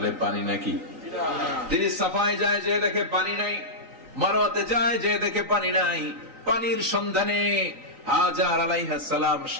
পানি নাকি। তিনি সাফায় যায়, যে দেখে পানি নাই। মারওয়াতে যায়, যে দেখে পানি নাই। পানির সন্ধানে হাজার আলাইহিস সালাম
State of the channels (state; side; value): late; left; 3.9 ms